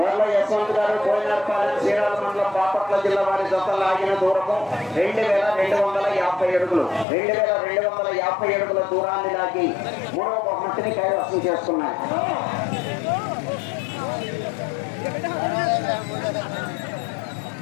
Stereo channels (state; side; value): drops out; right; at 7.1 s